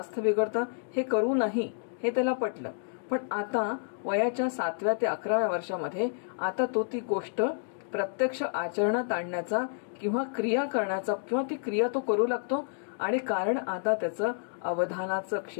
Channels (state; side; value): silent; right; digital silence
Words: बिघडतं, हे करू नाही, हे त्याला पटलं. पण आता वयाच्या 7व्या ते 11व्या वर्षामध्ये आता तो ती गोष्ट प्रत्यक्ष आचरणात आणण्याचा किंवा क्रिया करण्याचा किंवा ती क्रिया तो करू लागतो. आणि कारण आता त्याचं अवधानाचं